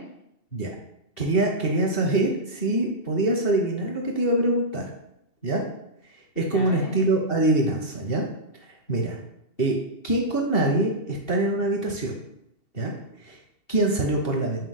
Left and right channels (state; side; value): late; right; 2.7 ms